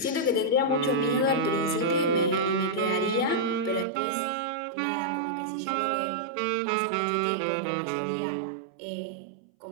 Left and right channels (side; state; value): left; drops out; at 3.9 s